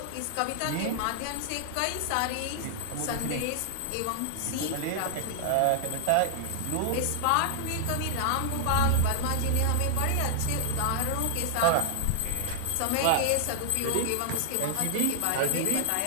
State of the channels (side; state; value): both; different; correlation 0.00